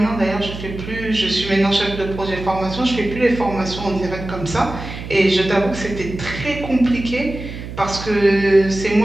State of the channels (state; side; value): noise; right; hum, 10 dB below the sound